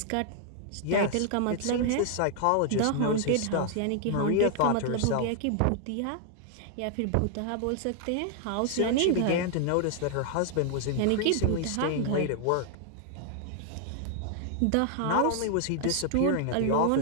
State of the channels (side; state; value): both; different; correlation 0.00